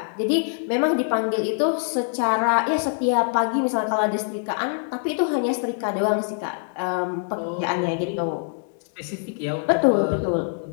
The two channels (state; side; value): silent; right; digital silence